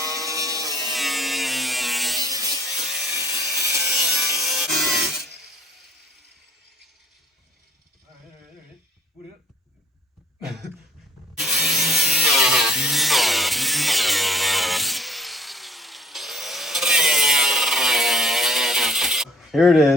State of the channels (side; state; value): both; normal; correlation 0.54